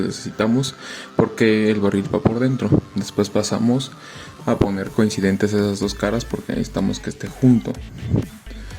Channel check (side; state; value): both; identical; correlation 1.00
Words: necesitamos porque el barril va por dentro. Después pasamos a poner coincidentes esas dos caras porque necesitamos que esté junto.